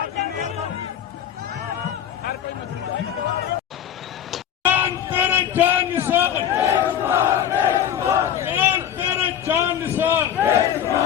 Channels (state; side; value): quieter; right; 9.7 dB